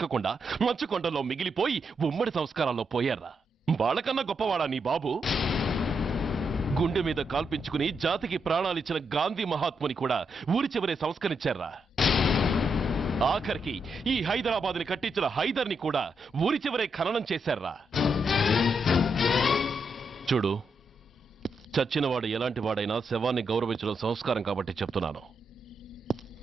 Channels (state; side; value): normal; both; correlation 0.81